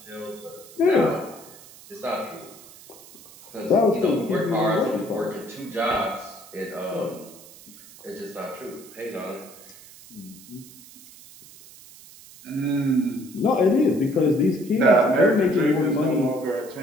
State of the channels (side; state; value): right; noise; hiss, 20 dB below the sound